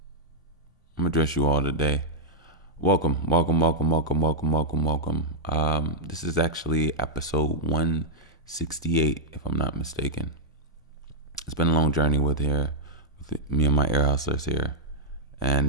I'm gonna address you all today. Welcome. This is actually episode 168, if I'm not mistaken. It's been a long journey with me and my ear hustlers here,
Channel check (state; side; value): normal; both; correlation -0.05